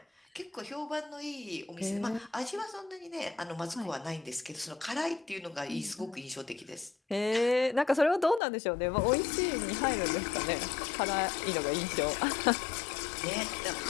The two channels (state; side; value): drops out; right; at 8.4 s